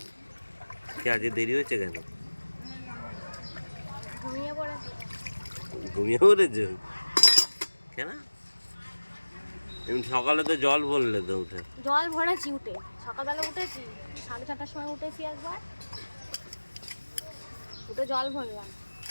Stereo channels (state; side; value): inverted; both; correlation -1.00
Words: কি আজকে দেরি হয়েছে কেন? ঘুমিয়ে পড়েছো কেন? এমনি সকালে তো জল ভরলে তো উঠে। জল ভরেছি উঠে, সকালবেলা উঠেছি 6:30টার সময় উঠেছি একবার, উঠে জল ভরলাম।